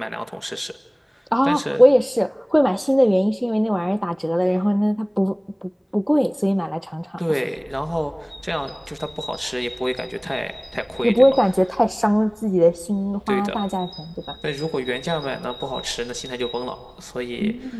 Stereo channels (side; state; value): both; identical; correlation 1.00